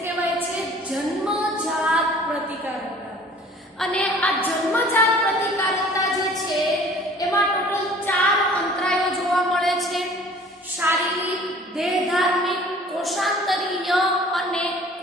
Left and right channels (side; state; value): both; normal; correlation 0.49